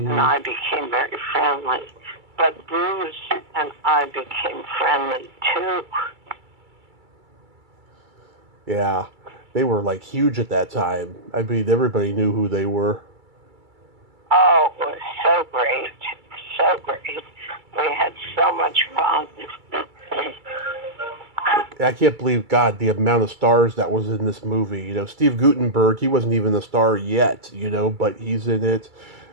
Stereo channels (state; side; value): late; left; 2.3 ms